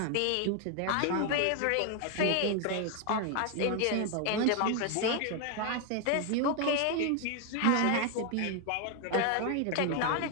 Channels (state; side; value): different; both; correlation 0.01